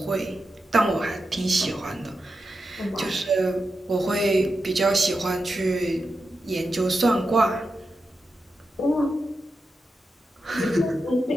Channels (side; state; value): both; normal; correlation 0.89